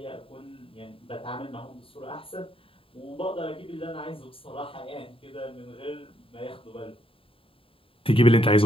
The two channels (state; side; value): late; right; 0.27 ms